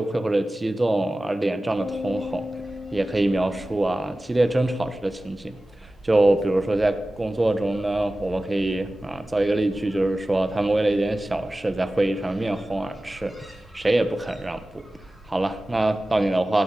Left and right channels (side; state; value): both; normal; correlation 0.96